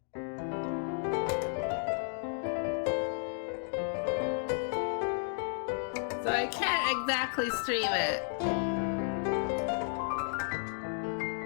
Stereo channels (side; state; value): right; silent; 56 dB below the other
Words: I can't exactly stream it.